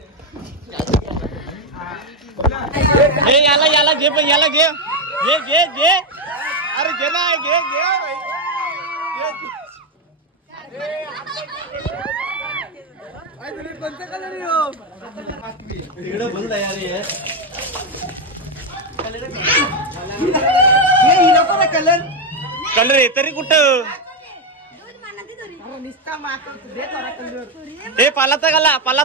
हे याला घे पण याला घे अरे घे ना घे कोणतं कलर इकडं बोल तयारी आहे कलर आहे तरी कुठं हे पालाचा गाला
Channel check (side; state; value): both; normal; correlation 0.06